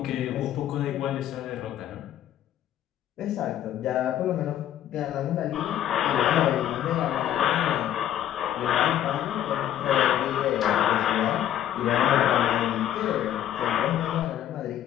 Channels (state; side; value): quieter; right; 11.3 dB